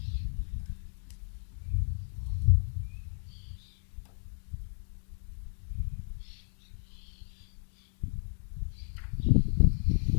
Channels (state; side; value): silent; right; digital silence